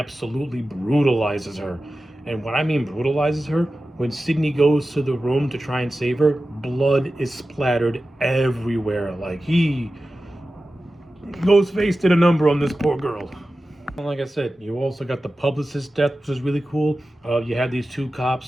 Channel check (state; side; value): normal; both; correlation 0.94